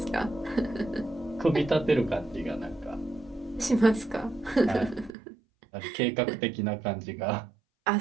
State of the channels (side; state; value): left; drops out; at 5.1 s